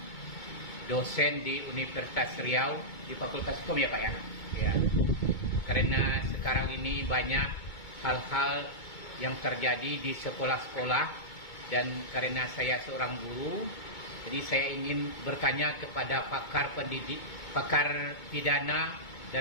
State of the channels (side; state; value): right; late; 2.2 ms